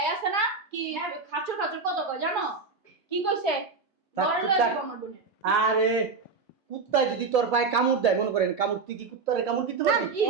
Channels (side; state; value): left; quieter; 4.4 dB